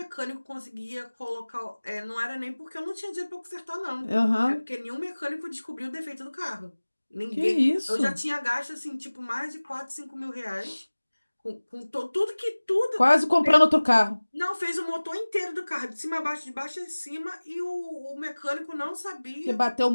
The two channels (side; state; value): both; inverted; correlation -1.00